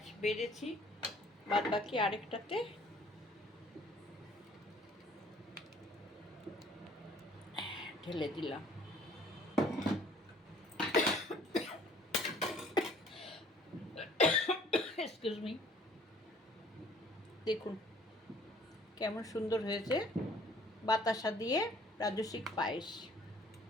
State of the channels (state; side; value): normal; both; correlation 0.56